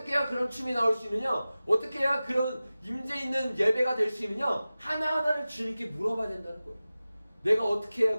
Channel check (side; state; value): both; inverted; correlation -0.96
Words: 해야 그런 춤이 나올 수 있느냐? 어떻게 해야 그런 임재 있는 예배가 될 수 있느냐? 하나하나를 주님께 물어봐야 된다는 거예요. 내가 어떻게 해야